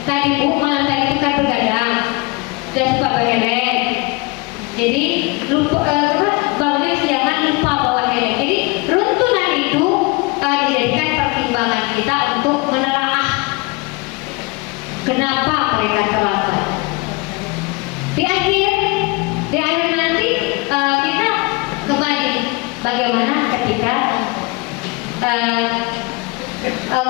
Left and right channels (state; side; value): quieter; right; 26.3 dB